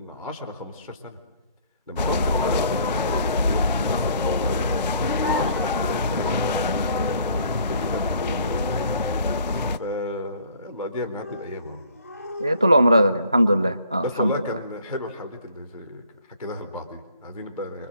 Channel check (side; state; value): both; inverted; correlation -0.58